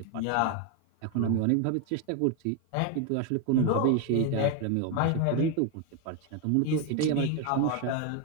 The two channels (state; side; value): different; both; correlation 0.01